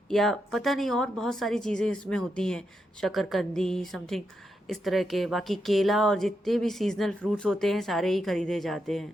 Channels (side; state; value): both; normal; correlation 0.84